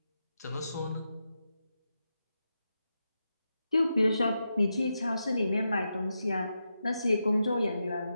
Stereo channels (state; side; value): inverted; both; correlation -0.87